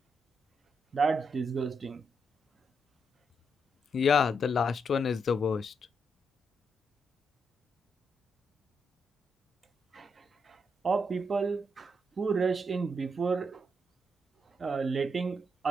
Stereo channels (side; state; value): both; normal; correlation 0.80